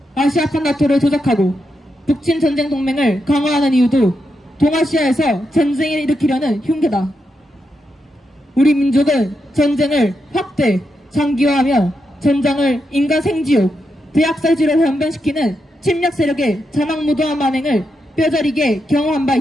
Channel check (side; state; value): both; normal; correlation 0.84